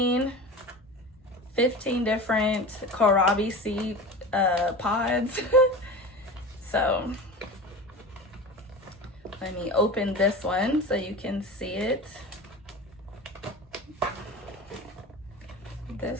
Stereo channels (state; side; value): normal; both; correlation 0.32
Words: different kohlrabi seed pods. So let me open this one so you can see it.